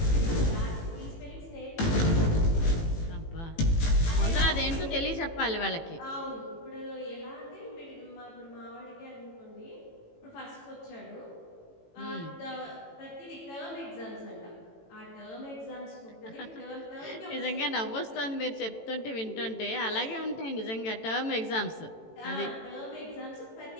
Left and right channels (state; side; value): late; right; 18 ms